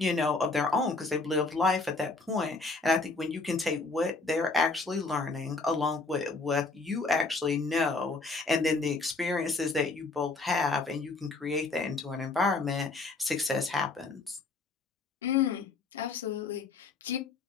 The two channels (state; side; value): quieter; right; 3.7 dB